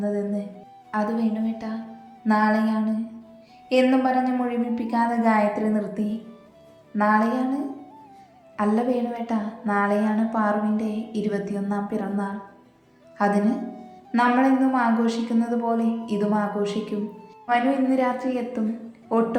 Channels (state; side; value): identical; both; correlation 1.00